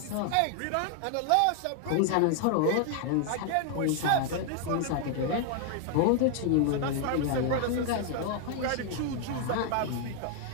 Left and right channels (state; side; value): different; both; correlation 0.00